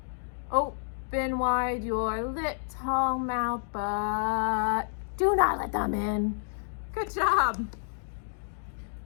Open wide your little mouth, but do not let them in. Good job.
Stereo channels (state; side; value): silent; right; digital silence